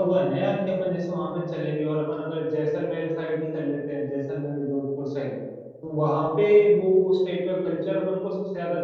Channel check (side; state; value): both; identical; correlation 1.00